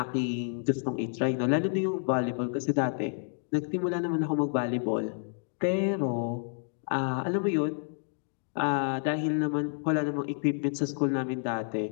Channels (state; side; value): silent; right; 58 dB below the other